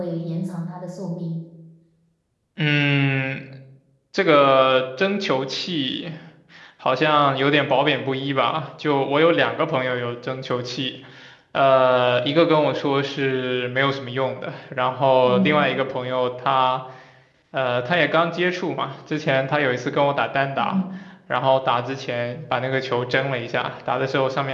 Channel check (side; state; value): both; identical; correlation 1.00